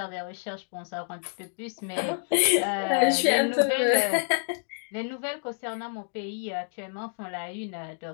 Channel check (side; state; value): right; silent; digital silence